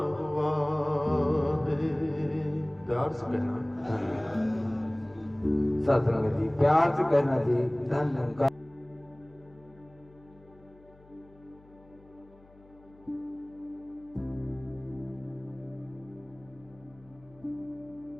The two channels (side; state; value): left; noise; hum, 26 dB below the sound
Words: हुआ है। प्यार से कहना सत्संग जी, प्यार से कहना जी, धन्यवाद।